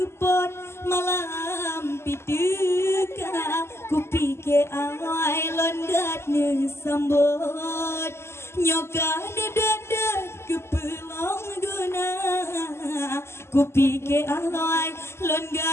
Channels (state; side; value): late; right; 0.12 ms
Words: malam pituka kupike awai londat ne sambut nyoka dedet kepelong guna kupike awai